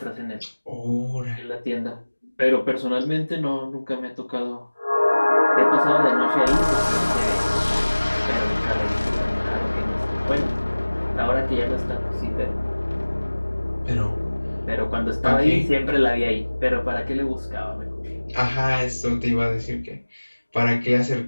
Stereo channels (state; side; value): inverted; both; correlation -1.00